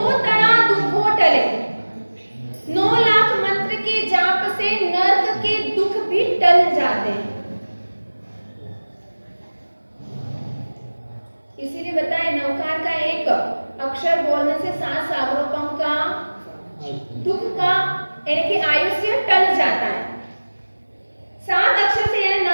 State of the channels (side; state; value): both; inverted; correlation -1.00